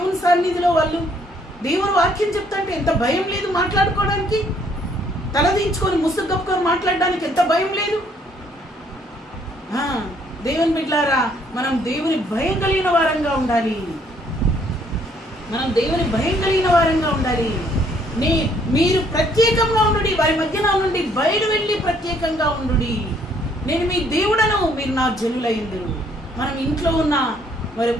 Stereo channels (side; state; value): both; normal; correlation 0.65